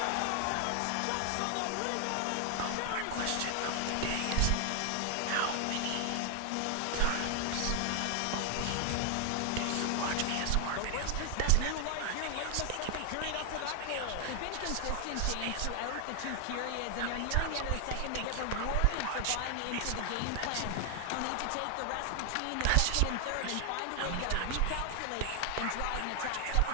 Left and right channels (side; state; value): both; different; correlation 0.00